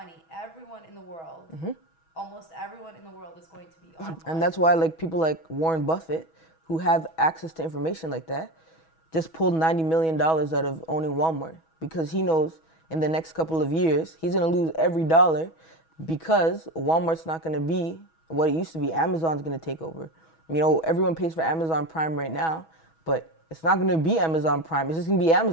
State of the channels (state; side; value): late; right; 6.2 ms